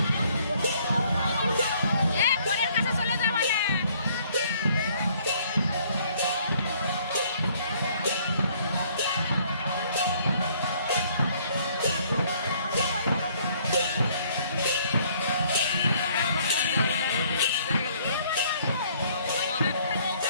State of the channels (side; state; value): both; inverted; correlation -0.62